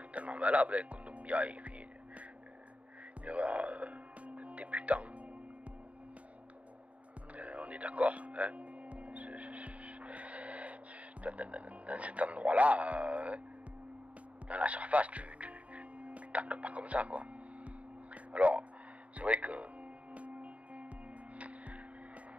valable. Hein. Kondogbia, il fait une erreur de débutant. On est d'accord. Hein. Dans cet endroit-là, dans la surface, tu tacles pas comme ça, quoi. Alors, c'est vrai que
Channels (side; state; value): left; late; 0.065 ms